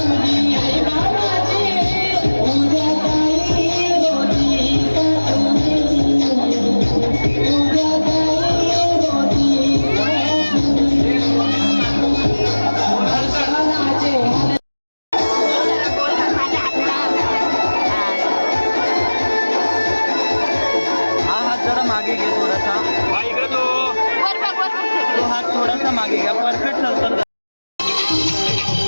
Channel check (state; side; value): inverted; both; correlation -1.00